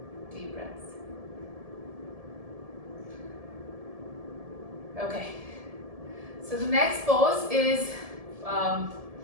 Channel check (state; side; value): late; left; 1.7 ms